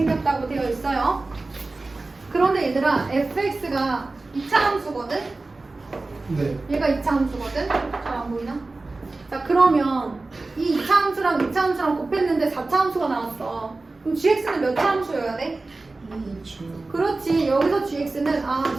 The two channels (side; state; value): left; quieter; 3.3 dB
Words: 되어 있어요. 그런데 얘들아, fx가 2차 함수거든? 네. 얘가 2차 함수거든? 잘 안 보이나? 자, 그러면 이 2차 함수랑 2차 함수랑 곱했는데 4차 함수가 나왔어. 그럼 gx는 몇 차 함수여야 돼? 그렇지. 여기서 gx는